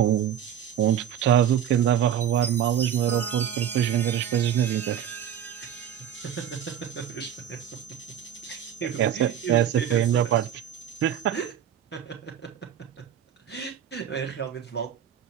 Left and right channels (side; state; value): left; quieter; 9.7 dB